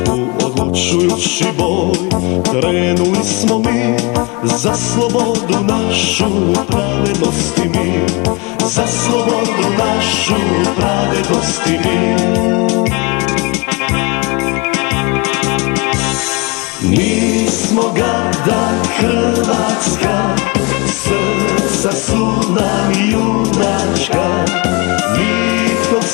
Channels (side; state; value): right; quieter; 27.3 dB